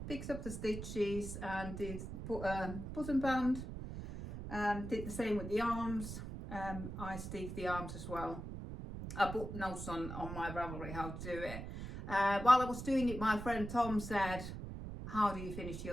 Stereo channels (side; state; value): right; noise; rumble, 8 dB below the sound